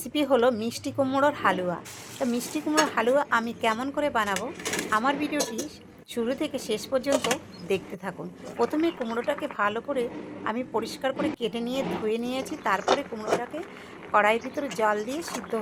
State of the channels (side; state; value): both; identical; correlation 1.00